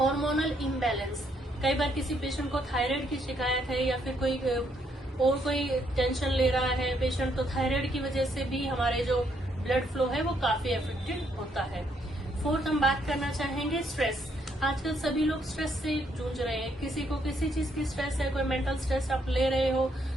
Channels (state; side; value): normal; both; correlation 0.72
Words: इम्बैलेंस। कई बार किसी पेशेंट को थायराइड की शिकायत है या फिर कोई टेंशन ले रहा है पेशेंट, तो थायराइड की वजह से भी हमारे जो ब्लड फ्लो है वो काफी अफेक्टेड होता है। फोर्थ हम बात करना चाहेंगे स्ट्रेस। आजकल सभी लोग स्ट्रेस से जूझ रहे हैं, किसी को किसी चीज की स्ट्रेस है, कोई मेंटल स्ट्रेस आप ले रहे हो,